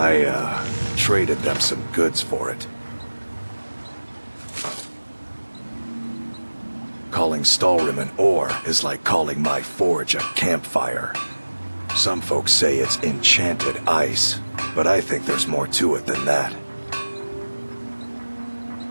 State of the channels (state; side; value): inverted; both; correlation -1.00